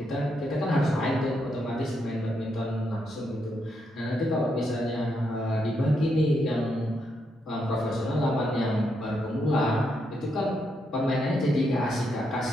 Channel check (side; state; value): both; normal; correlation 0.80